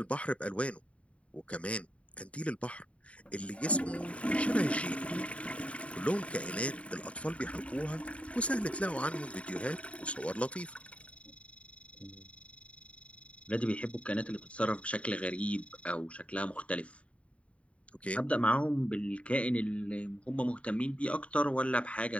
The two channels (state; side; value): late; right; 0.064 ms